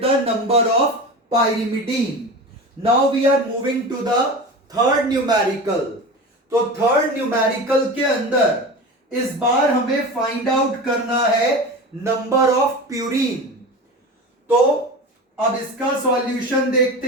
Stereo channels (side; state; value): both; normal; correlation 0.30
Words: the number of pyrimidine. Now we are moving to the third numerical. तो थर्ड न्यूमेरिकल के अंदर इस बार हमें फाइंड आउट करना है नंबर ऑफ प्यूरीन। तो अब इसका सॉल्यूशन